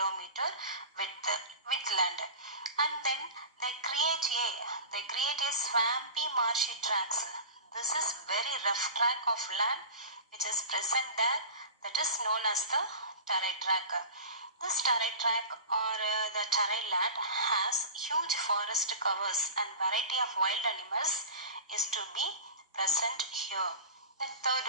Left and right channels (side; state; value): both; inverted; correlation -0.32